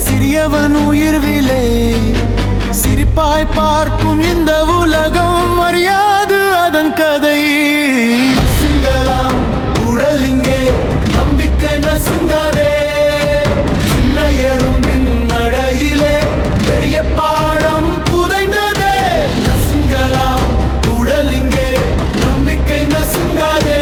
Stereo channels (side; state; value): both; identical; correlation 1.00